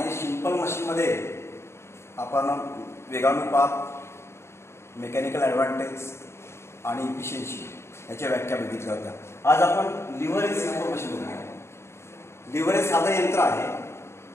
सिंपल मशीनमध्ये आपण वेगानुपात, मेकॅनिकल ॲडव्हान्टेज आणि इफिशियन्सी याच्या व्याख्या बघितल्या होत्या. आज आपण लिव्हर हे सिंपल मशीन बघूया. लिव्हर हे साधं यंत्र आहे.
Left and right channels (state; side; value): late; right; 0.13 ms